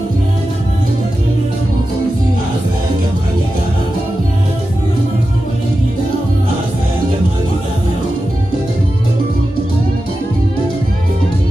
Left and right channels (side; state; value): both; normal; correlation 0.92